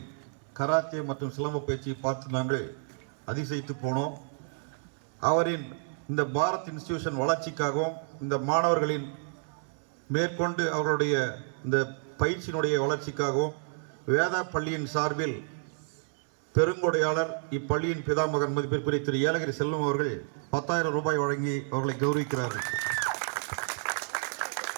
கராத்தே மற்றும் சிலம்ப பயிற்சியை பார்த்து நாங்கள் அதிசயித்து போனோம். அவரின் இந்த பாரத் இன்ஸ்டிடியூஷன் வளர்ச்சிக்காகவும் இந்த மாணவர்களின் மேற்கொண்டு அவர்களுடைய இந்த பயிற்சியினுடைய வளர்ச்சிக்காகவும் வேதா பள்ளியின் சார்பில் பெருங்கொடையாளர் இப்பள்ளியின் பிதாமகன் மதிப்பிற்குரிய திரு ஏலகிரி செல்வம் அவர்கள் 10,000 ரூபாய் வழங்கி அவர்களை கௌரவிக்கிறார்கள்.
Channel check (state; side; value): silent; left; 58 dB below the other